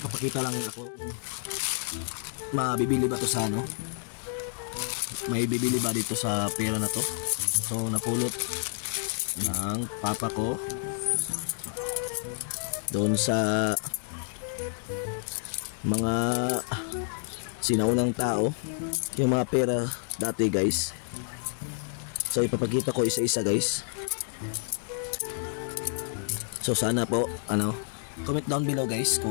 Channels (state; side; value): silent; right; 58 dB below the other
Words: lang ako. Mabibili ba to sa ano? May bibili ba dito sa pera na to? So napulot ng papa ko doon sa mga sinaunang tao, yung mga pera dati guys. So ipapakita ko isa-isa guys. So sana po comment down below guys